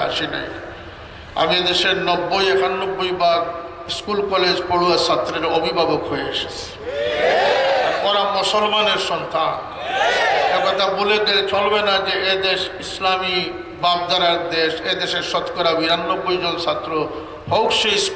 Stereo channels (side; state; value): both; identical; correlation 1.00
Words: আসি নাই। আমি এদেশের 90-91 ভাগ স্কুল কলেজ পড়ুয়া ছাত্রের অভিভাবক হয়ে এসেছি। ওরা মুসলমানের সন্তান, একথা বলে গেলে চলবে না যে এদেশ ইসলামী বাপদারার দেশ। এদেশের শতকরা 92 জন ছাত্র, হোক সে